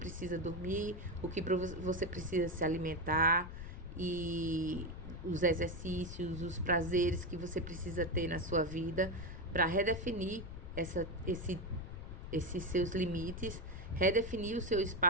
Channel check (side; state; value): left; noise; rumble, 9 dB below the sound